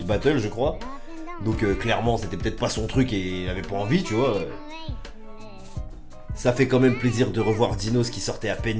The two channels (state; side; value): identical; both; correlation 1.00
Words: battles, je crois. Donc clairement, c'était peut-être pas son truc et il avait pas envie, tu vois. Ça fait quand même plaisir de revoir Dinos qui sortait à